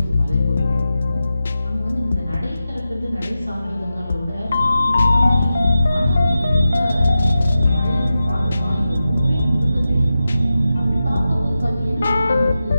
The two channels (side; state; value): both; inverted; correlation -0.92